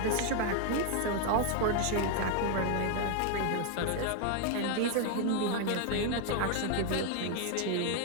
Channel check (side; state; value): both; different; correlation 0.00